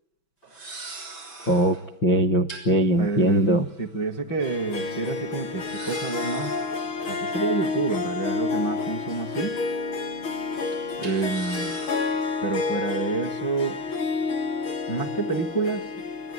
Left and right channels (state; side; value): late; right; 6.0 ms